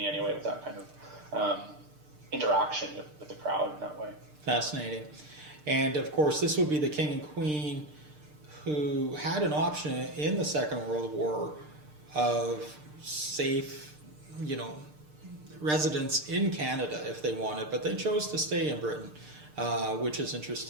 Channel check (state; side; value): late; left; 6.7 ms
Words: anyway, with that kind of interaction with the crowd in that way. Fascinating. And of course, this would be the king and queen who had an option in the Second World War of safe, residence in Canada if they wanted, but they chose to stay in Britain, which is